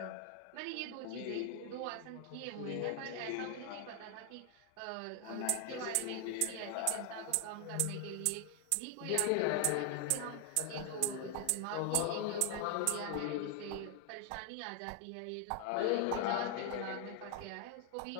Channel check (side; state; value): both; different; correlation 0.00